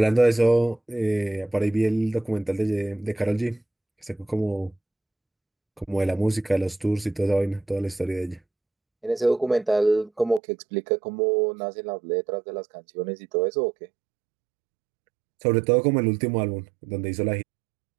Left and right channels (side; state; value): left; drops out; at 10.4 s